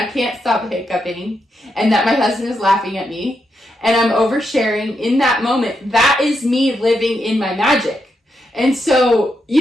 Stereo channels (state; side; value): normal; both; correlation 0.83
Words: can't stop hiccuping, and that my husband is laughing at me and I'm oversharing in that moment. That is me living in my magic. And so,